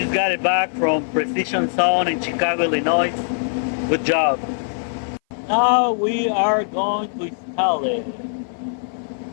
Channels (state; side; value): silent; right; 59 dB below the other